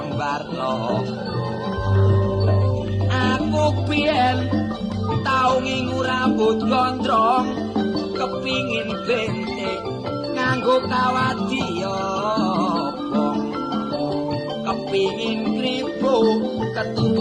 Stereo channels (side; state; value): both; identical; correlation 1.00